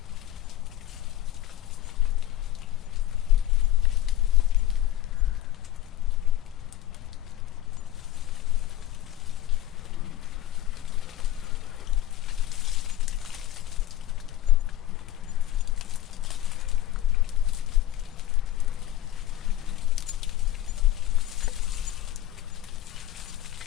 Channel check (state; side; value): quieter; right; 13.6 dB